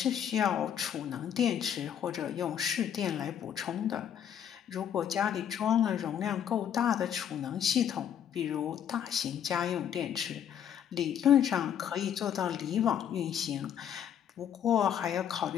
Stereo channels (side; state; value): right; quieter; 9.2 dB